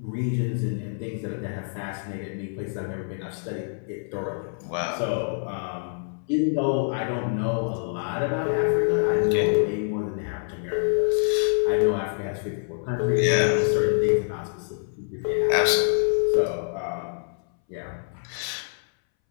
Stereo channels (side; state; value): right; silent; 61 dB below the other